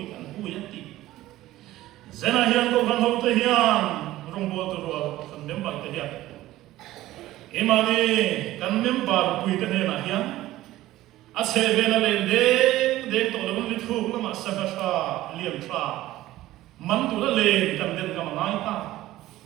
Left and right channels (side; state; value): left; quieter; 15.7 dB